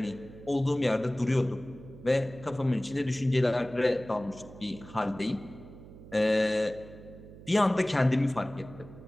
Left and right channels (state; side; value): noise; right; hum, 17 dB below the sound